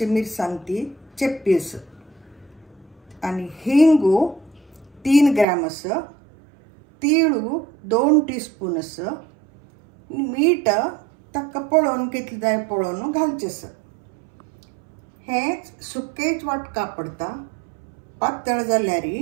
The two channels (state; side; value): drops out; left; at 5.5 s